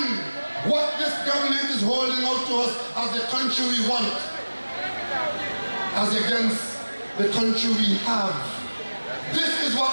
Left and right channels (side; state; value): both; inverted; correlation -1.00